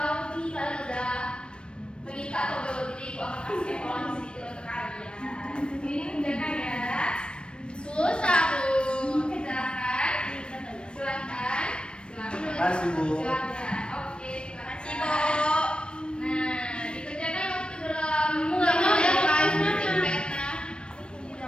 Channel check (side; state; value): right; late; 0.056 ms